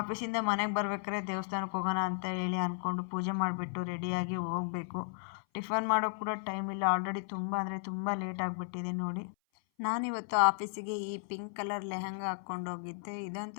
ಮನೆಗೆ ಬರ್ಬೇಕಾದ್ರೆ ದೇವಸ್ಥಾನಕ್ಕೆ ಹೋಗೋಣ ಅಂತ ಹೇಳಿ ಅಂದ್ಕೊಂಡು ಪೂಜೆ ಮಾಡಿಬಿಟ್ಟು ರೆಡಿಯಾಗಿ ಹೋಗಬೇಕು. ಟಿಫನ್ ಮಾಡೋಕ್ಕೆ ಕೂಡ ಟೈಮ್ ಇಲ್ಲ, ಆಲ್ರೆಡಿ ತುಂಬ ಅಂದರೆ ತುಂಬ ಲೇಟ್ ಆಗಿಬಿಟ್ಟಿದೆ. ನೋಡಿ ನಾನಿವತ್ತು ಆಫೀಸಿಗೆ ಈ ಪಿಂಕ್ ಕಲರ್ ಲೆಹಂಗಾ ಹಾಕ್ಕೊಂಡು ಹೋಗಿದ್ದೆ.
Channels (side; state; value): right; silent; 55 dB below the other